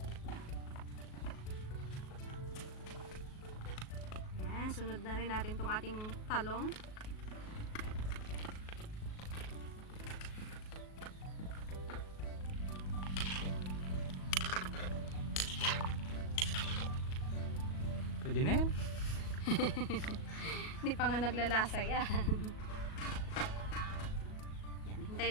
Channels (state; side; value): late; right; 37 ms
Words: Susunod na rin natin tong ating talong. Pwede na yan. Hindi pa nga naglalasa yan. Yan, hintay